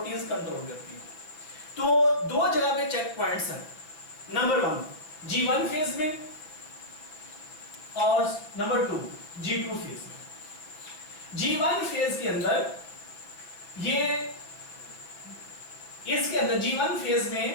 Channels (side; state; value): right; late; 6.2 ms